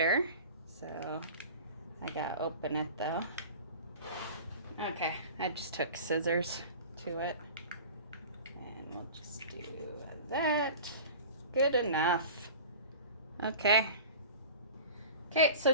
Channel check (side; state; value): both; inverted; correlation -0.37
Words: So I gotta open it though. Okay, I just took scissors to it. We'll just do that. Good enough. Okay. Okay, so